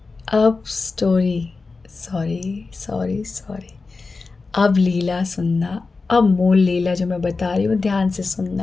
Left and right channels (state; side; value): quieter; right; 4.0 dB